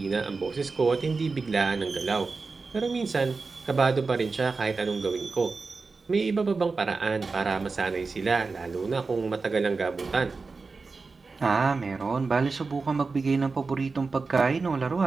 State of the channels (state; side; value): quieter; left; 4.2 dB